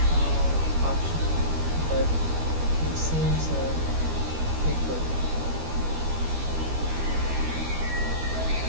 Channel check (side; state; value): left; late; 12 ms